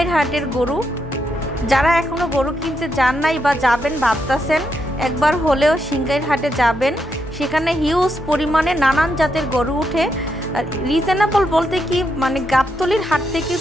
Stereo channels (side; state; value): both; normal; correlation 0.81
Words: হাটের গরু। যারা এখনও গরু কিনতে যান নাই বা যাবেন ভাবতেছেন, একবার হলেও সিংগাইর হাটে যাবেন। সেখানে হিউজ পরিমাণে নানান জাতের গরু উঠে। রিজনেবল বলতে কি, মানে গাবতলির হাট থেকে